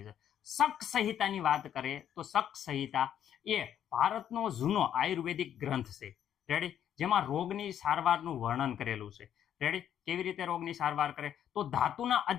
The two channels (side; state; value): right; quieter; 9.9 dB